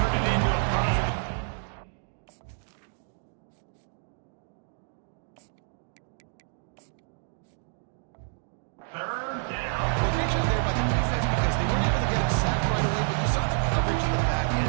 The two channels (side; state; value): left; silent; 59 dB below the other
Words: it into a positive. Third down. Well, great job there by the defense because they weren't able to get him sacked right away, but you saw the coverage in the back end.